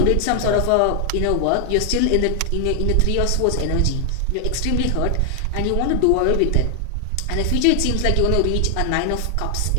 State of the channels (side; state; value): both; different; correlation 0.00